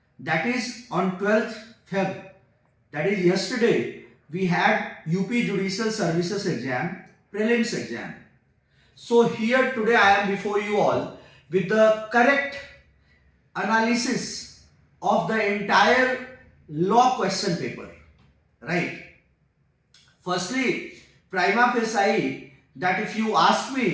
That is on 12th Feb. That is yesterday we had UP Judicial Services exam, prelims exam. So here today I am before you all with the correct analysis of the entire law question paper. Right. Firstly, prima facie, that if you ask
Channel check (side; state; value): both; identical; correlation 1.00